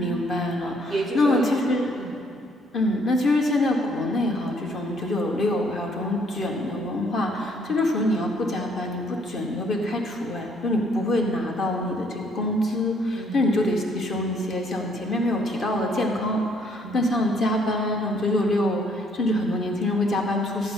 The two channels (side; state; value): both; normal; correlation 0.65